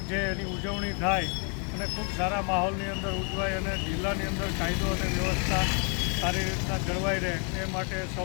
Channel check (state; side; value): quieter; right; 37.9 dB